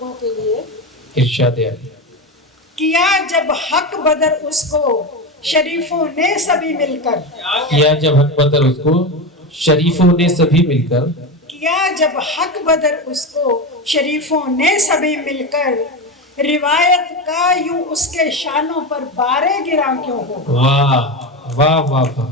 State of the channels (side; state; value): both; normal; correlation 0.18